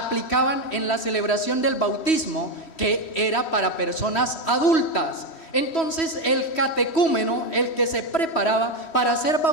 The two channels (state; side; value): late; right; 3.1 ms